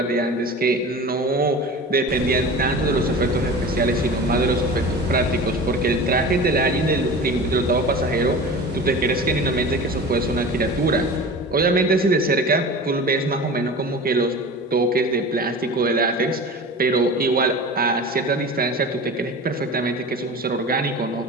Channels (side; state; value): both; normal; correlation 0.34